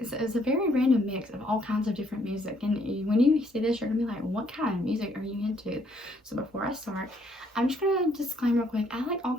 random mix of all kinds of different music. And when you see this, you're going to be like, what kind of music are you into? So before I start, I'm just going to disclaim real quick. I like all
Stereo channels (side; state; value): both; normal; correlation 0.68